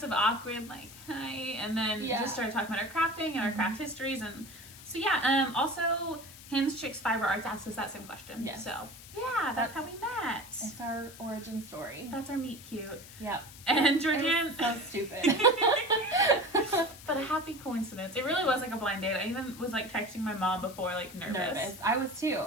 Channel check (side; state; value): left; noise; hiss, 17 dB below the sound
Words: of awkward, like, hi, and then just started talking about our crafting and our craft histories. And so yeah, also Hinge Chicks Fiber Arts asked us that same question. Yes. So yeah, that's how we met. It's our origin story. That's our meet cute. Yep. And Georgianne. So stupid. But a happy coincidence. It really was like a blind date. I even was like texting my mom before, like nervous. I was too.